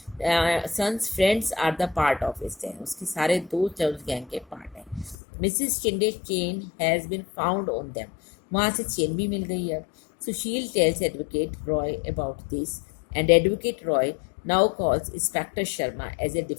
son's friends are the part of this gang. उसके सारे दोस्त उस गैंग के पार्ट हैं. Mrs Shinde chain has been found on them. वहाँ से चेन भी मिल गई है. Sushil tells advocate Roy about this and advocate Roy now calls inspector Sharma as a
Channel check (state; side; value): drops out; right; at 5.2 s